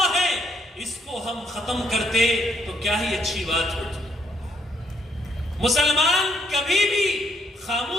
ہے، اس کو ہم ختم کرتے تو کیا ہی اچھی بات ہوتی۔ مسلمان کبھی بھی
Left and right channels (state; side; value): normal; both; correlation 0.72